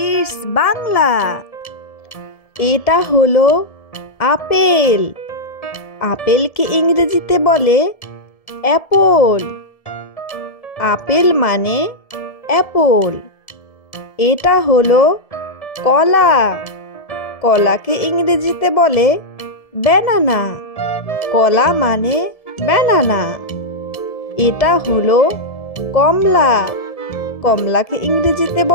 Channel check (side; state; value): right; late; 1.7 ms